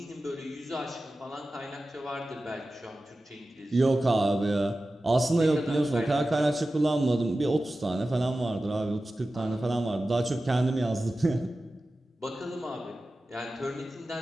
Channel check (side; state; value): both; normal; correlation 0.94